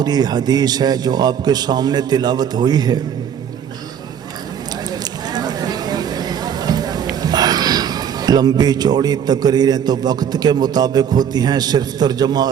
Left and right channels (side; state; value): left; quieter; 8.6 dB